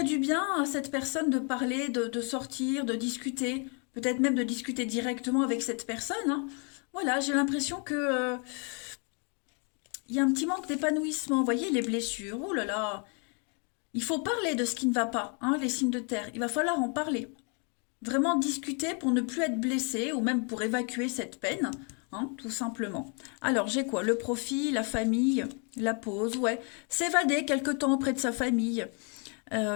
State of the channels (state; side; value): quieter; right; 37.3 dB